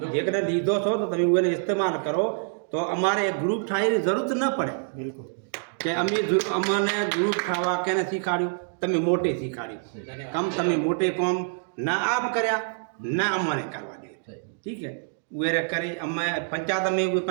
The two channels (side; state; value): left; silent; digital silence